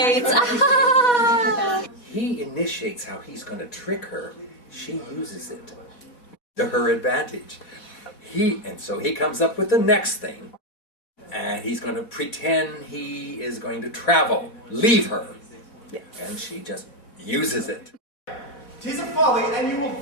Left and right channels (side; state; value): right; late; 4.1 ms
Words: He initiates how he's going to trick her. She uses it to her advantage. So he comes up with the next thing, and he's going to pretend he is going to travel, leave her, and she just uses it. 'Tis a folly, and you will